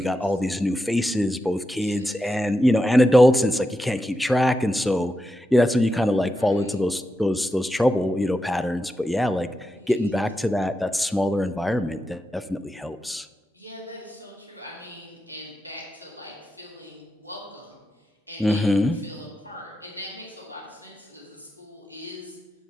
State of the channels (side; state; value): both; normal; correlation 0.88